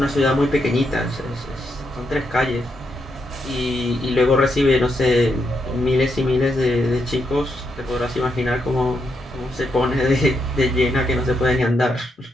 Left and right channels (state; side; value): normal; both; correlation 0.80